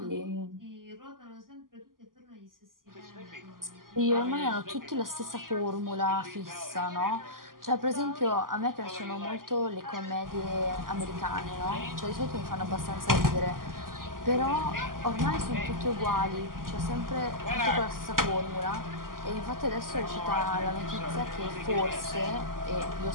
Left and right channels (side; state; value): left; late; 0.91 ms